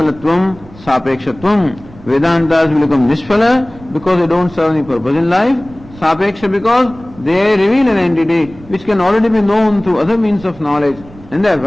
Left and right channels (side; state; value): right; noise; rumble, 21 dB below the sound